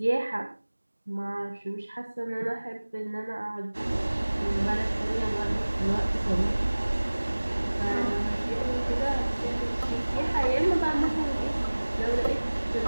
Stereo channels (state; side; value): inverted; both; correlation -1.00